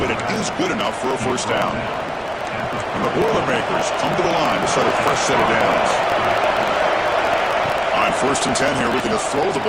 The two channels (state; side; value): identical; both; correlation 1.00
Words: it is good enough for a first down. And the Boilermakers come to the line to set a fresh set of downs. On 1st and 10 here, looking to throw the